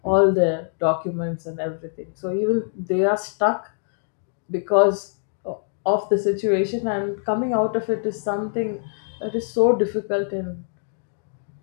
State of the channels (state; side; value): silent; right; digital silence